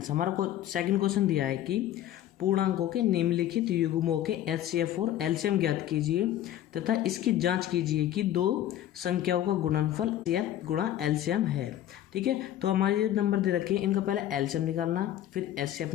हमारा को सेकंड क्वेश्चन दिया है कि पूर्णांकों के निम्नलिखित युग्मों के एचसीएफ और एलसीएम ज्ञात कीजिए तथा इसकी जांच कीजिए कि दो संख्याओं का गुणनफल एचसीएफ गुणा एलसीएम है। ठीक है, तो हमारे ये नंबर दे रखे हैं, इनका पहले एलसीएम निकालना, फिर एचसीएफ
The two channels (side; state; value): right; quieter; 12.1 dB